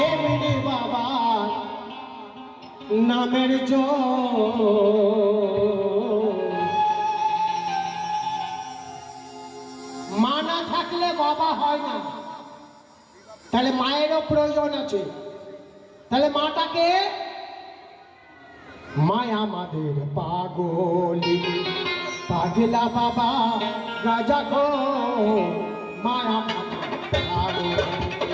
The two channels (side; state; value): both; identical; correlation 1.00